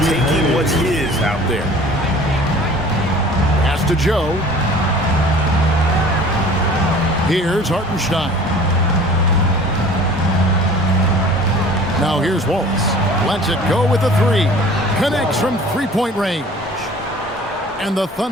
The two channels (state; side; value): normal; both; correlation 0.46